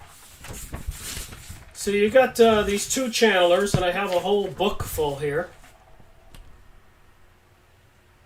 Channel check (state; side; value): identical; both; correlation 1.00